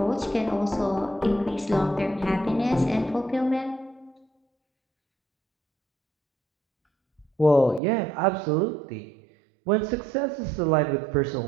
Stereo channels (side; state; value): left; drops out; at 7.8 s